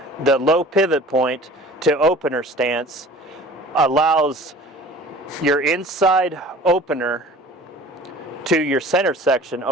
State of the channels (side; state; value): both; normal; correlation 0.44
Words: the low pivot point to opener stance allows your inside opener to your center section